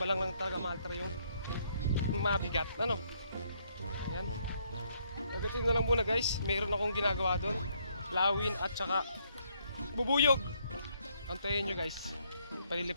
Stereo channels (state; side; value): inverted; both; correlation -0.70